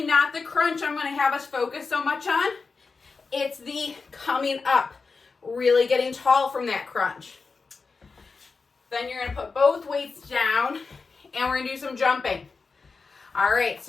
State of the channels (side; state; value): right; quieter; 4.5 dB